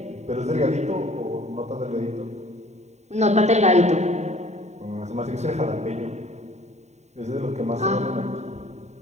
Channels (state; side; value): late; left; 0.32 ms